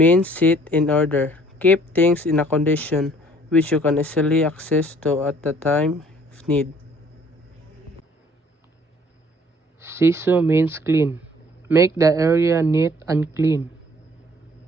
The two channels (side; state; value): both; normal; correlation 0.58